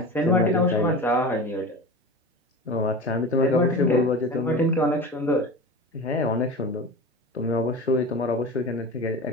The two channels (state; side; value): normal; both; correlation 0.31